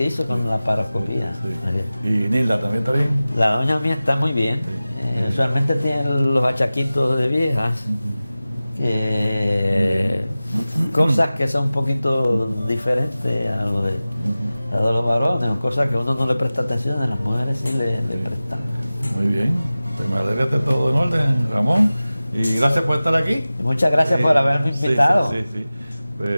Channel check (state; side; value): inverted; both; correlation -0.97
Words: con la paroscopía. Sí. ¿Y Nilda también está bien? La doña mía está muy bien. Usualmente tiene los achaquitos de viejas. Cosas que son un poquito diferentes a lo de los varones, o cosas que uno no le presta atención, a las mujeres sí le prestan. Muy bien, pues me alegra que esté todo en orden, Ramón, y gracias por estar aquí. Y muchas gracias por haberme invitado. Sí.